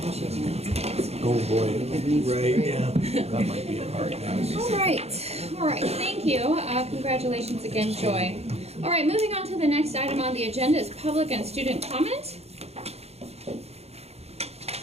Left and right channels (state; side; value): late; left; 0.30 ms